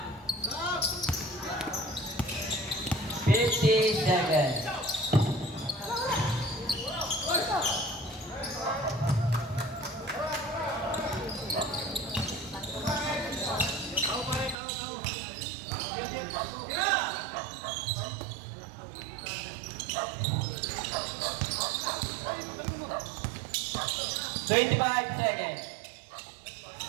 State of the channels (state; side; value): drops out; left; at 14.6 s